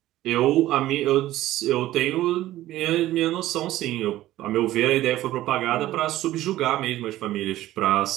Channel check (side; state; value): left; quieter; 15.0 dB